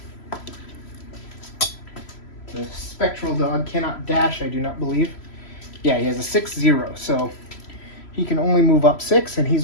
The spectral dog cannot dash, I do not believe. Yeah, he has a 6-0, so he can only move up 6, and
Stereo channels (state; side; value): late; right; 3.0 ms